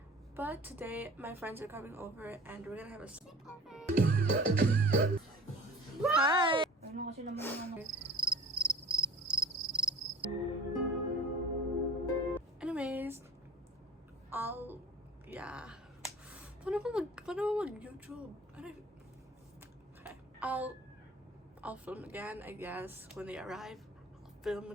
but today my friends are coming over and we're gonna have a sleepover. Hi. Anyways, paano ba mag-YouTube? Okay. I'll film again, I guess, when they arrive. I'll film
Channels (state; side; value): normal; both; correlation 0.43